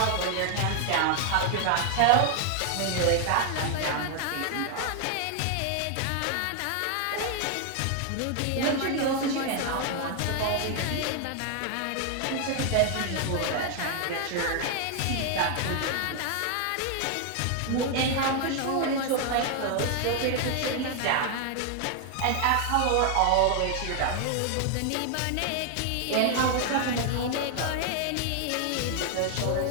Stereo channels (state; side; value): different; both; correlation 0.00